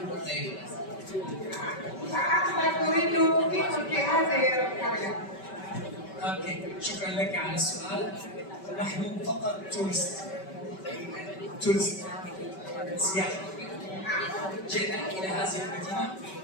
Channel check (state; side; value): late; right; 5.2 ms